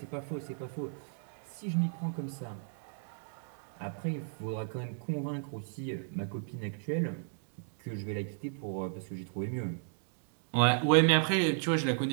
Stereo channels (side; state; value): left; silent; digital silence